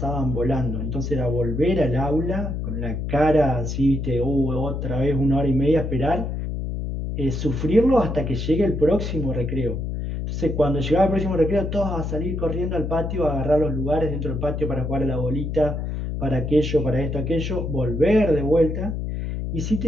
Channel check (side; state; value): left; noise; hum, 3 dB below the sound